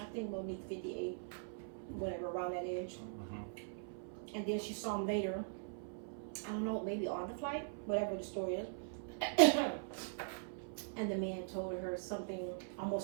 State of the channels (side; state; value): left; silent; 50 dB below the other